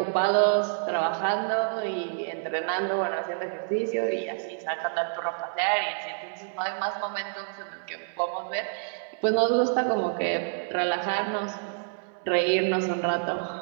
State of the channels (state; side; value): silent; left; digital silence